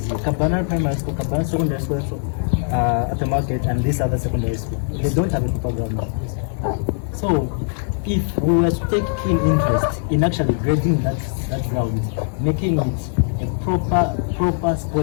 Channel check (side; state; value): right; silent; digital silence